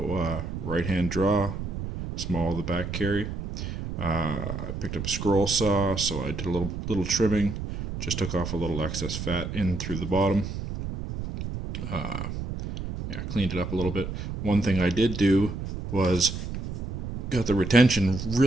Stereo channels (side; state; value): right; noise; rumble, 6 dB below the sound